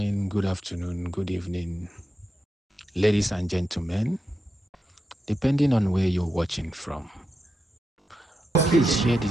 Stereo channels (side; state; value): both; normal; correlation 0.87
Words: good afternoon, good evening, ladies and gentlemen, depending on where you're watching from. Please share